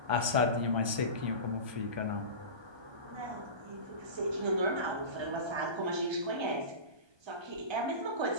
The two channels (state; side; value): late; left; 1.3 ms